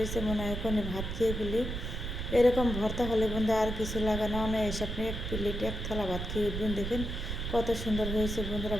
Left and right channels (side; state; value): right; noise; rumble, 4 dB below the sound